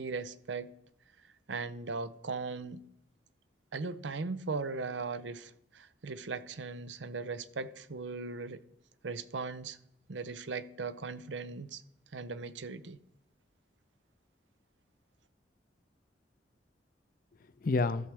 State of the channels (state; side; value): normal; both; correlation 0.13